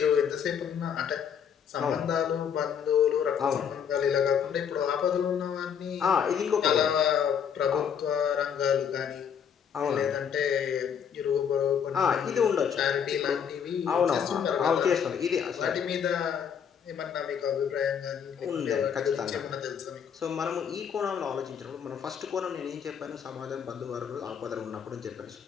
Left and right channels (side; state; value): right; quieter; 7.8 dB